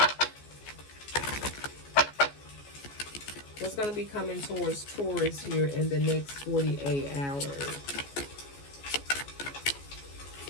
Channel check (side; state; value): right; late; 14 ms